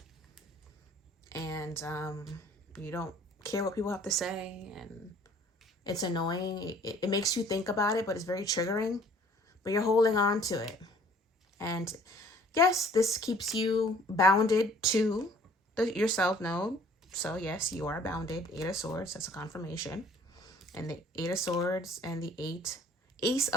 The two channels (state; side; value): normal; both; correlation 0.55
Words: And you don't care what people have to say, and it's annoying. It makes you think about it, but it's very triggering. But you're holding on to it. And yes, this keeps you bounded to your self node. So yes, you are bounded. 8 of Swords, that's a confirmation. And the 8 of Swords and the Ace